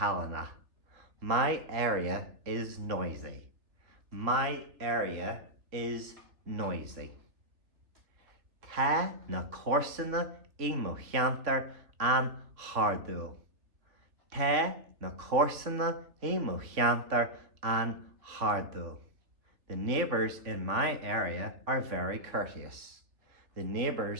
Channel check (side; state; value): left; late; 3.3 ms